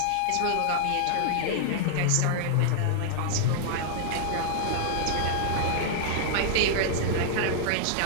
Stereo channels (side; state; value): both; different; correlation -0.01